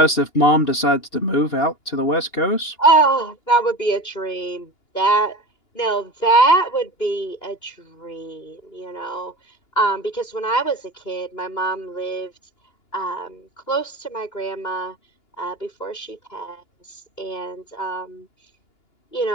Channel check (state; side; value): late; right; 2.9 ms